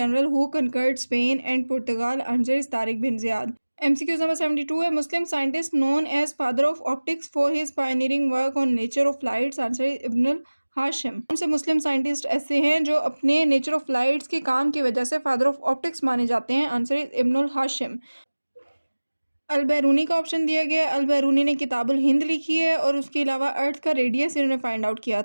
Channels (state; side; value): inverted; both; correlation -1.00